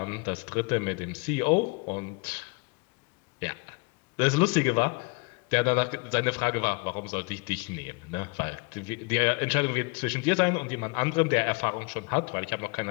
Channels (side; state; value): right; quieter; 29.8 dB